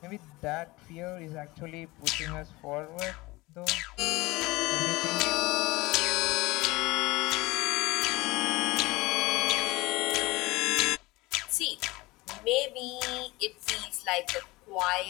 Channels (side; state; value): right; quieter; 21.5 dB